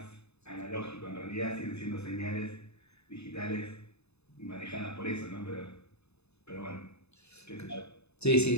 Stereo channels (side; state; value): right; late; 0.80 ms